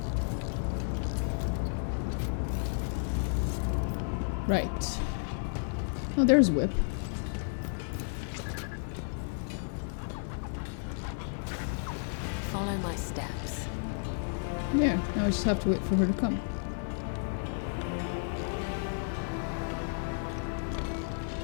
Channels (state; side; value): silent; right; digital silence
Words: Right. Oh, there's Whip. Follow my steps. Yeah, now I just have to wait for her to come.